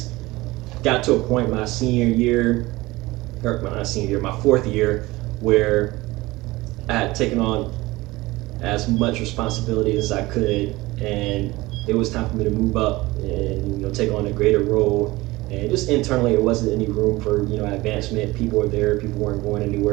Got to a point my senior year, or not senior year, my 4th year, where I had taken on as much responsibility as I could, and it was time for me to move up and take on a greater role. And just internally, it wasn't any room for advancement. People were there, people weren't going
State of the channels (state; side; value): quieter; left; 20.2 dB